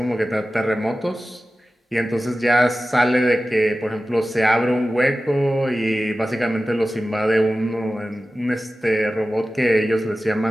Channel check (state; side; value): normal; both; correlation 0.95